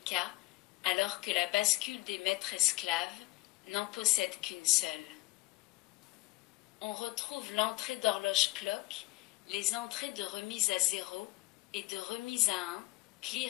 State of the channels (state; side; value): quieter; right; 21.2 dB